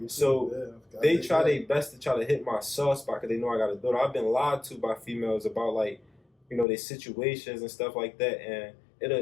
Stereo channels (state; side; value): drops out; right; at 6.7 s